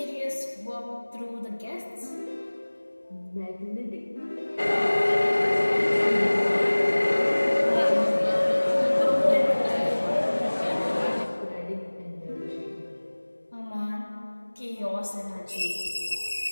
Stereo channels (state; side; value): inverted; both; correlation -1.00